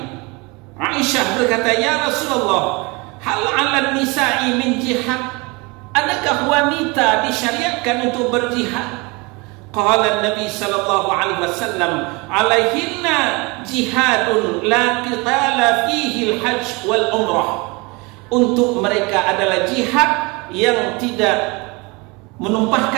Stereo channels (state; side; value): quieter; left; 26.9 dB